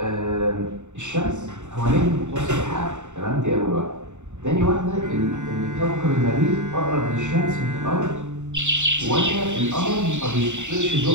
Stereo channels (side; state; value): left; late; 0.84 ms